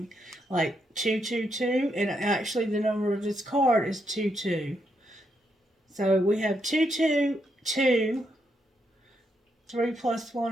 like 222, and actually the number of this card is 22. So we have 222, 3 plus 1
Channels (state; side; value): normal; both; correlation 0.79